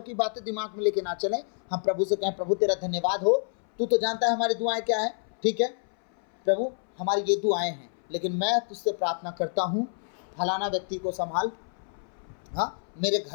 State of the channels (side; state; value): right; silent; 58 dB below the other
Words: की बातें दिमाग में लेके ना चलें। हम प्रभु से कहें प्रभु तेरा धन्यवाद हो, तू तो जानता है हमारी दुआएं क्या है, ठीक है प्रभु, हमारी ये दुआएं हैं, लेकिन मैं तुझसे प्रार्थना करता हूँ, फलाना व्यक्ति को संभाल, हाँ, मेरे